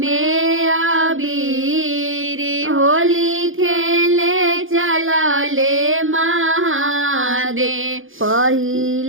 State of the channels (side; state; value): left; late; 0.59 ms